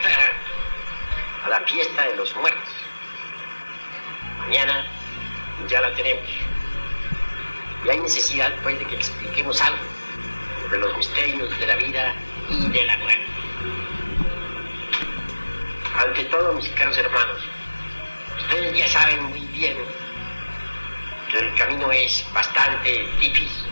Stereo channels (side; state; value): both; inverted; correlation -1.00